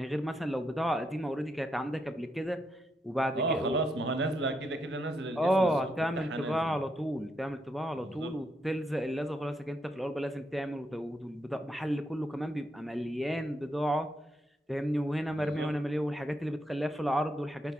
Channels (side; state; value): both; normal; correlation 0.80